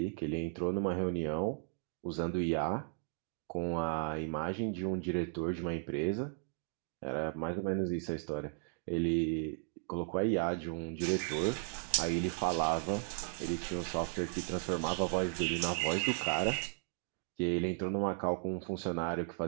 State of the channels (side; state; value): left; silent; 54 dB below the other